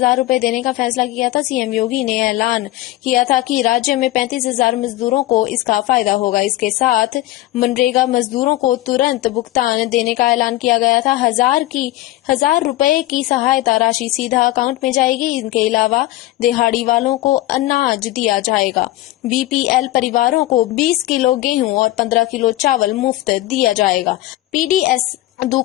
रुपए देने का फैसला किया था। सीएम योगी ने ऐलान किया था कि राज्य में 35,000 मजदूरों को इसका फायदा होगा। इसके साथ मनरेगा मजदूरों को तुरंत भुगतान देने का ऐलान किया गया था। 1,000 रुपए की सहायता राशि सीधा अकाउंट में जाएगी। इनके अलावा दिहाड़ी वालों को अनाज दिया जाएगा। BPL परिवारों को 20 किलो गेहूं और 15 किलो चावल मुफ्त दिया जाएगा। PDS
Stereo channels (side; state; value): right; quieter; 16.3 dB